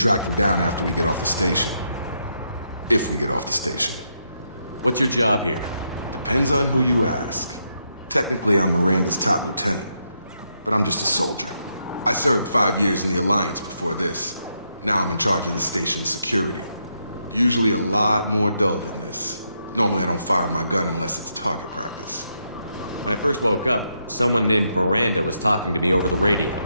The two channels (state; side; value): inverted; both; correlation -0.80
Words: them down after we get off the station. If we get off the station. What's your job here? Depends on who you ask. Technically, I'm Miranda's top lieutenant. But I'm just a soldier. I served 5 years in the Alliance before this. Now I'm in charge of the station's security. Usually a lot more dull than this. Normally I don't fire my gun unless it's target practice. When I first woke up, someone named Miranda was talking to me over the radio.